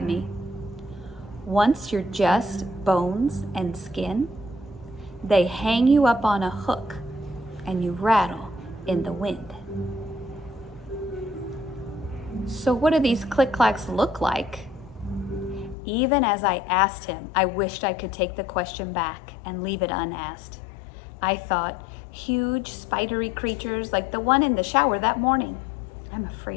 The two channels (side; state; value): right; drops out; at 15.8 s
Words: me. Once you're just bones and skin, they hang you up on a hook and you rattle in the wind. So what do these click-clacks look like? Even as I asked him, I wished I could take the question back and leave it unasked. I thought, huge spidery creatures like the one in the shower that morning. I'm